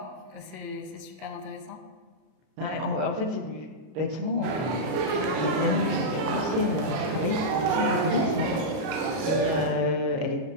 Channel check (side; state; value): left; late; 32 ms